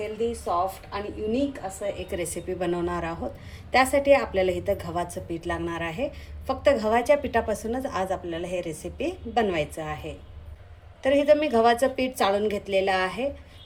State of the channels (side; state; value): both; identical; correlation 1.00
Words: सॉफ्ट आणि युनिक असं एक रेसिपी बनवणार आहोत. त्यासाठी आपल्याला इथं गव्हाचं पीठ लागणार आहे. फक्त गव्हाच्या पिठापासूनच आज आपल्याला हे रेसिपी बनवायचं आहे. तर इथं मी गव्हाचं पीठ चाळून घेतलेलं आहे.